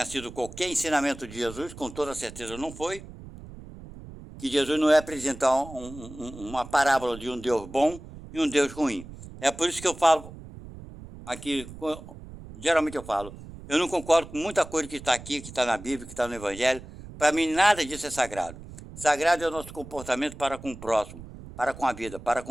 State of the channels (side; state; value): right; noise; rumble, 15 dB below the sound